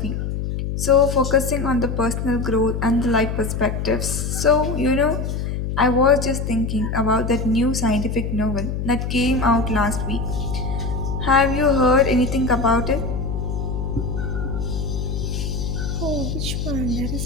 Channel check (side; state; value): left; noise; hum, 3 dB below the sound